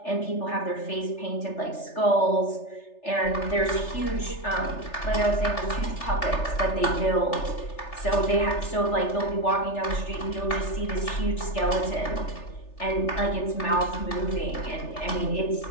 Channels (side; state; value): right; late; 3.3 ms